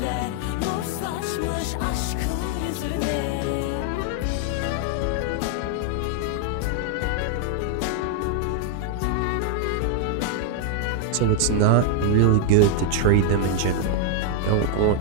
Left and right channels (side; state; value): both; different; correlation 0.00